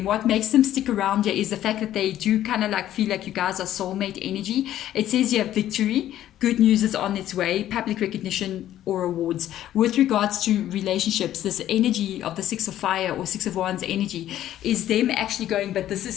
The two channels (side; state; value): right; quieter; 12.4 dB